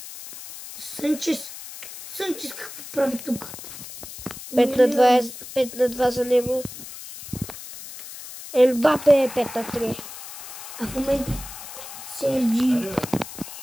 Санчес. Санчес какво прави тук? 5 на 2 за него. Ембапе е 5 на 3. А в момента Серджи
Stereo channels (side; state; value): left; noise; hiss, 12 dB below the sound